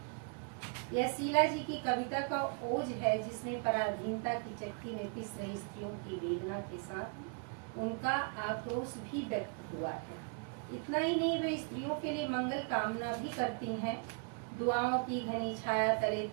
यह शीला जी की कविता का ओज है, जिसमें पराधीनता की चक्की में पिस रही स्त्रियों की वेदना के साथ उनका आक्रोश भी व्यक्त हुआ है। इतना ही नहीं, वे स्त्रियों के लिए मंगल कामना भी करती हैं। दुआओं की घनी छाया तले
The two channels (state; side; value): quieter; left; 38.8 dB